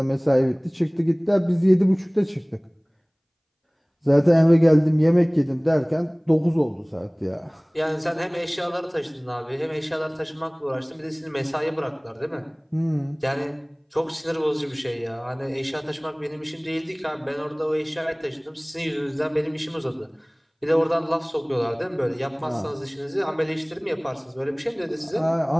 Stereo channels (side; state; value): both; identical; correlation 1.00